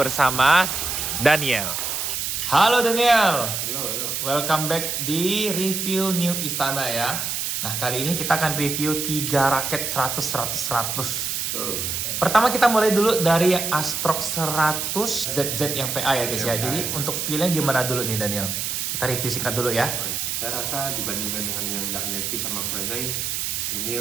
Daniel. Halo Daniel. Halo. Welcome back di review New Istana ya. Nah, kali ini kita akan review 3 raket 100. Pertama kita mulai dulu dari yang Astrox 100 ZZ yang VA ya guys ya. Jadi untuk feel-nya gimana dulu nih Daniel? Kita review singkat dulu ya. Saya rasa dibandingkan dengan yang Dark Navy sama Kurenai, ini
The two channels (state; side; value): noise; right; hiss, 2 dB below the sound